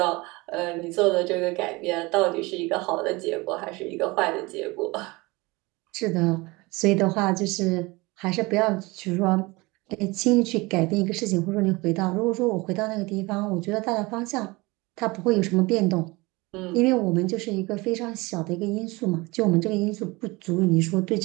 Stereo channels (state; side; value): quieter; left; 23.6 dB